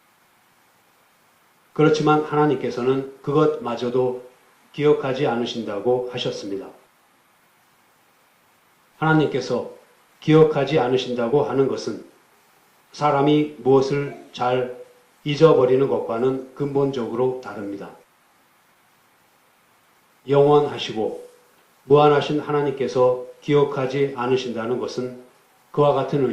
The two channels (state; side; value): identical; both; correlation 1.00